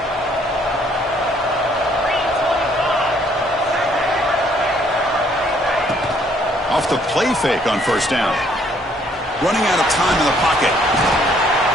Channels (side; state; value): both; normal; correlation 0.65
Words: Off the play fake on first down. Running out of time in the pocket.